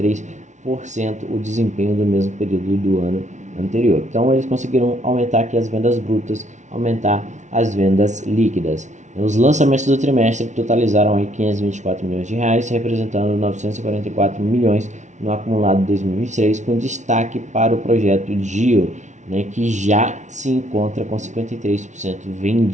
o desempenho do mesmo período do ano anterior. Então eles conseguiram aumentar aqui as vendas brutas, aumentar as vendas líquidas. Os lançamentos do trimestre totalizaram aí 524 milhões de reais, representando 944 milhões no acumulado de 2023, com destaque para o projeto GIO, né, que já se encontra com 53%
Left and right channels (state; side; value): late; left; 0.35 ms